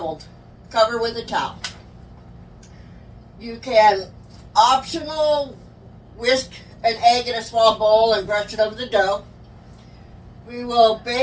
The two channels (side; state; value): both; identical; correlation 1.00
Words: Cover with a towel. You can optional whisk an egg in a small bowl and brush it over the dough. We will